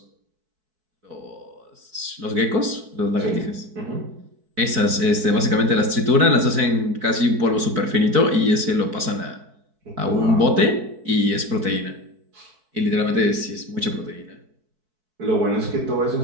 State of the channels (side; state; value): left; late; 4.6 ms